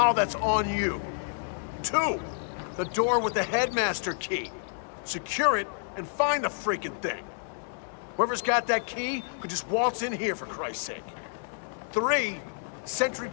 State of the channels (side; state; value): right; silent; 58 dB below the other